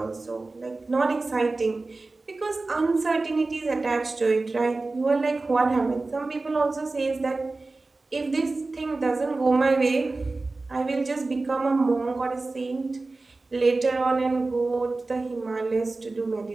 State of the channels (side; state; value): left; quieter; 3.4 dB